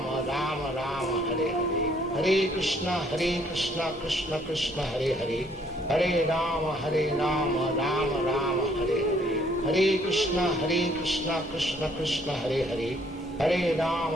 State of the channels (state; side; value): normal; both; correlation 0.64